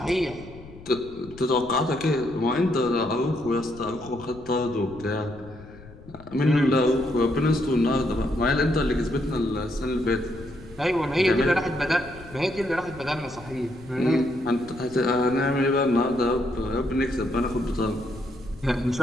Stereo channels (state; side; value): noise; left; rumble, 19 dB below the sound